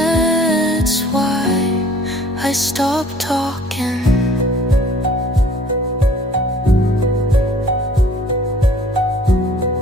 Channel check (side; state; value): both; normal; correlation 0.53